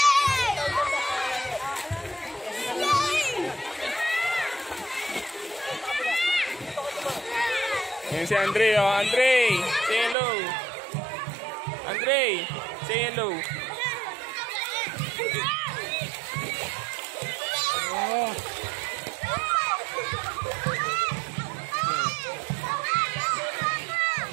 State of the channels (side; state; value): left; drops out; at 10.2 s